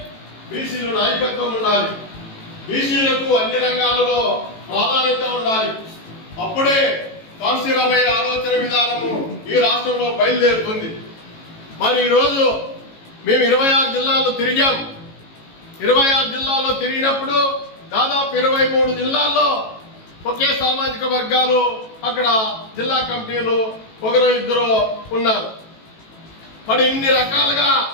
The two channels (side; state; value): right; late; 18 ms